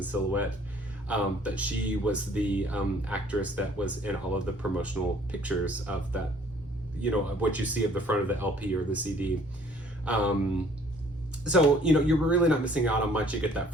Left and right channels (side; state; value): both; normal; correlation 0.58